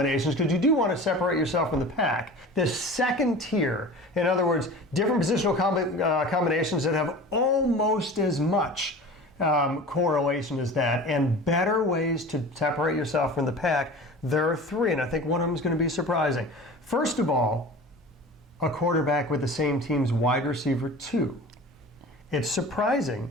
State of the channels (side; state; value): both; normal; correlation 0.38